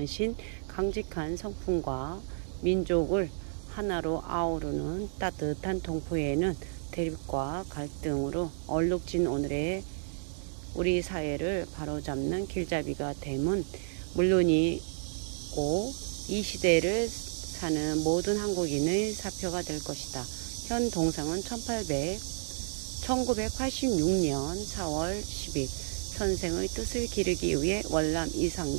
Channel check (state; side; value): silent; left; digital silence